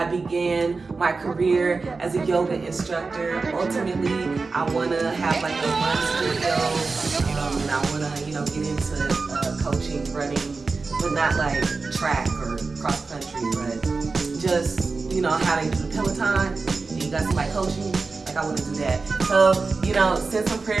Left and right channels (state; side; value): quieter; left; 4.1 dB